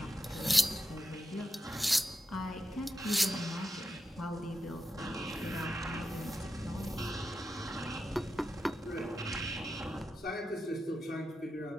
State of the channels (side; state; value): both; normal; correlation 0.89